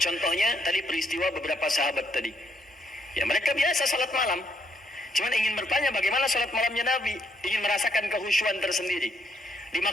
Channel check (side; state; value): both; normal; correlation 0.73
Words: tadi peristiwa beberapa sahabat tadi. Ya mereka biasa salat malam. Cuman ingin bertanya bagaimana salat malamnya Nabi. Ingin merasakan kekhusyuan tersendiri.